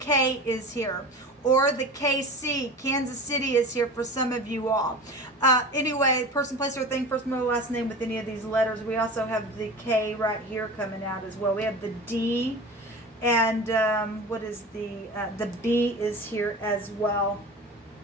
is here, or the KC. Kansas City is here for some of you all. Anyway, person, place, or thing, first, middle, last name with any of these letters. We also have the K right here coming out as well. We have the D. And what is the B is here as well.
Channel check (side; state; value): both; normal; correlation 0.33